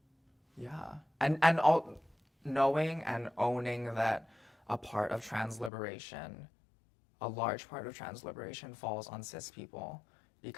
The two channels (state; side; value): drops out; right; at 5.7 s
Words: yeah. And all knowing and owning that a part of trans liberation, a large part of trans liberation falls on cis people